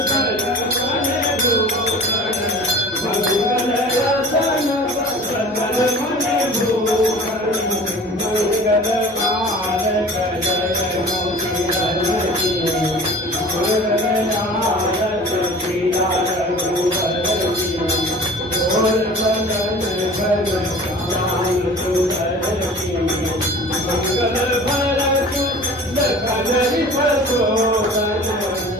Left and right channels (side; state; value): both; normal; correlation 0.42